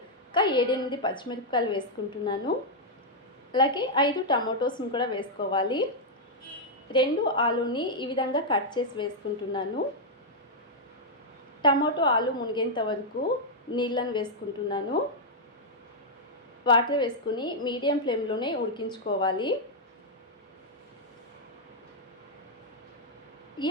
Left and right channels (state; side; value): normal; both; correlation -0.04